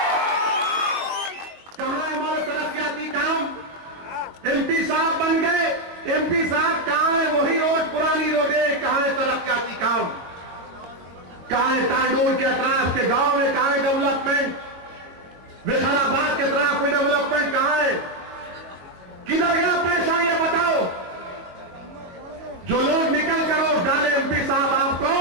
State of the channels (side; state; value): left; late; 22 ms